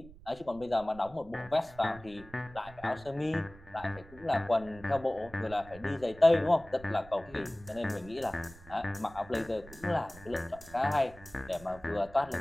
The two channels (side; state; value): right; noise; rumble, 20 dB below the sound